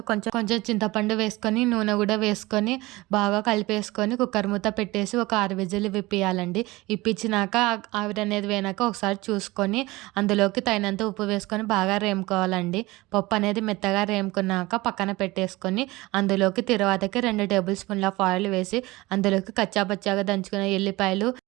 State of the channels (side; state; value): left; quieter; 20.7 dB